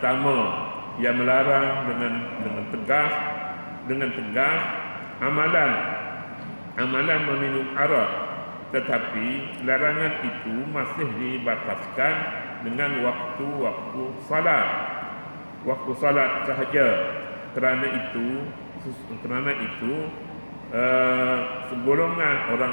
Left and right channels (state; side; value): inverted; both; correlation -1.00